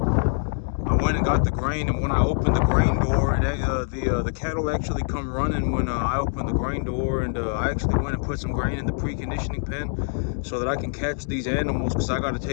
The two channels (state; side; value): silent; right; digital silence